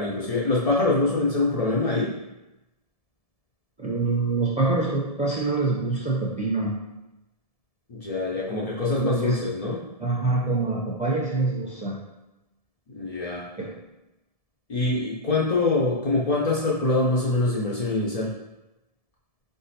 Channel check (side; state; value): right; late; 1.7 ms